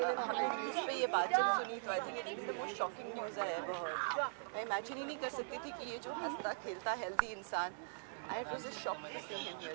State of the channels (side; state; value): left; silent; digital silence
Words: न्यूज़ पे ये बात जब सुनी तो I think it's been the most shocking news I ever heard. मैं इमेजिन ही नहीं कर सकती थी कि ये जो हंसता खेलता हेल्दी इंसान, it was a shock to see him